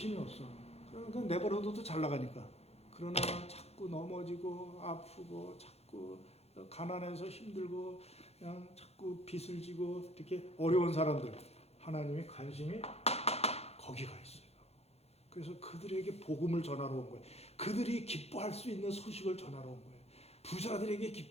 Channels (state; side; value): late; right; 0.30 ms